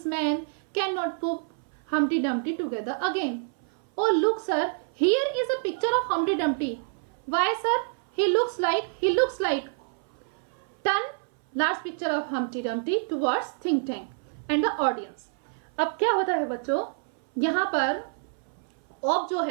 men cannot put Humpty Dumpty together again. Oh look sir, here is a picture of Humpty Dumpty. Why sir? He looks like. Turn large picture of Humpty Dumpty towards think tank and the audience. अब क्या होता है बच्चों, यहाँ पर of जो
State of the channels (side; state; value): left; silent; 58 dB below the other